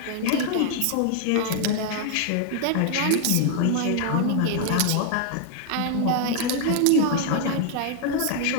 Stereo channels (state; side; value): different; both; correlation 0.00